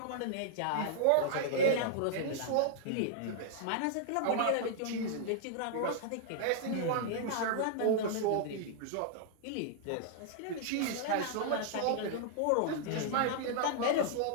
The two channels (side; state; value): both; different; correlation -0.01